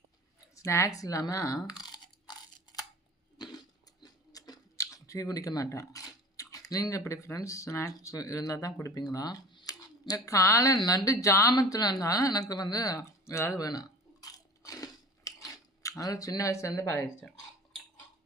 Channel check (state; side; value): normal; both; correlation 0.39